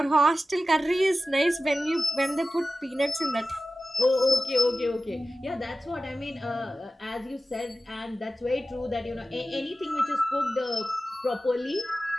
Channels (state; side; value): normal; both; correlation 0.94